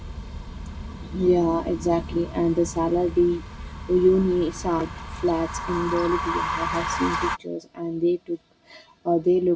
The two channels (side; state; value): both; identical; correlation 1.00